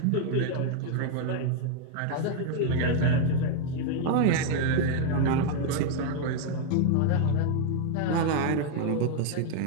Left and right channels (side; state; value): both; different; correlation 0.00